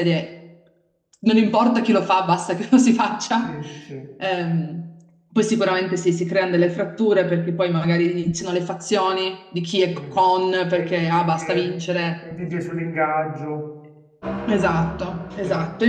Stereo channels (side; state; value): both; identical; correlation 1.00